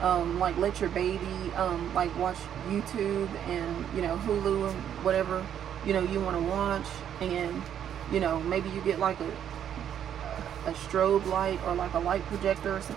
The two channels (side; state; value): left; quieter; 9.5 dB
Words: like let your baby like watch YouTube and, you know, Hulu and whatever, you know, you want to watch. And, you know, maybe you get like a strobe light or like a light projector or